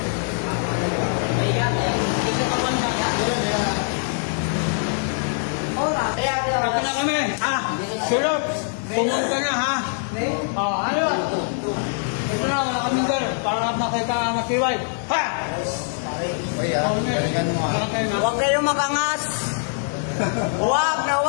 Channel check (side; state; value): right; silent; digital silence